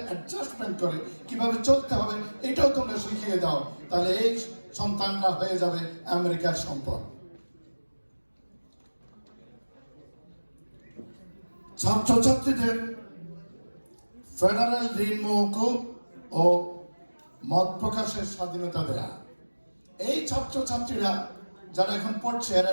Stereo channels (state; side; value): inverted; both; correlation -1.00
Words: অ্যাডজাস্টমেন্ট করে কিভাবে চলতে হবে এটাও তোমরা শিখিয়ে দাও। তাহলে এই সন্তানরা হয়ে যাবে আমেরিকার সম্পদ। ছাত্রছাত্রীদের ফেডারেল ঋণ মওকুফ ও মত প্রকাশের স্বাধীনতা দেয়া। এই ছাত্রছাত্রীরা যারা এখন পড়ছে, এরা